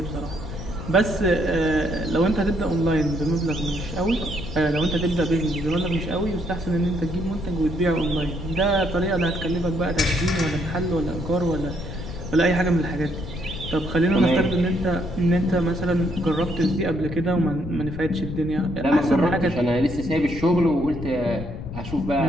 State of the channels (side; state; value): left; noise; rumble, 9 dB below the sound